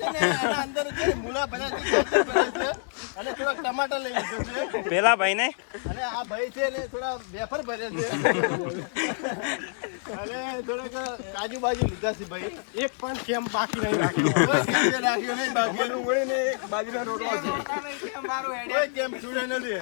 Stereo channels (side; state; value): right; silent; 60 dB below the other